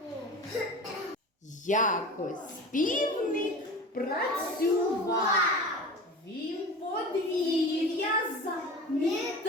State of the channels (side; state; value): both; normal; correlation 0.33